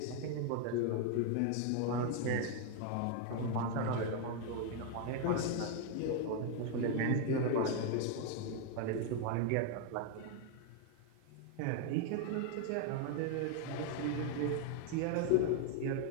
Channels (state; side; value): different; both; correlation 0.00